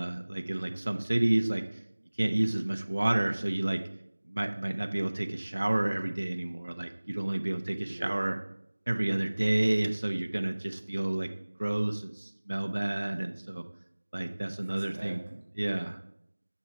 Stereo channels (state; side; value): inverted; both; correlation -1.00